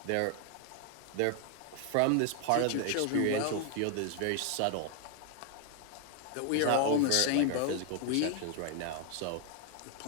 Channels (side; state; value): both; different; correlation 0.00